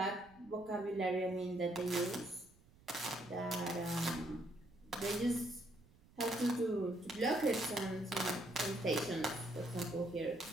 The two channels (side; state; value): right; noise; rumble, 26 dB below the sound